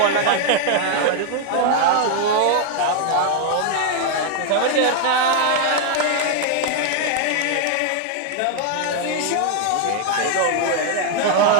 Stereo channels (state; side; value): different; both; correlation 0.00